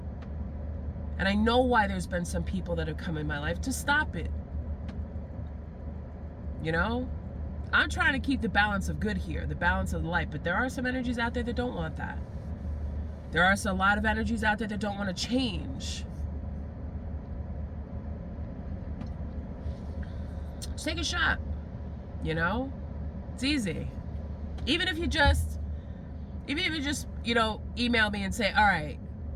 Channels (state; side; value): identical; both; correlation 1.00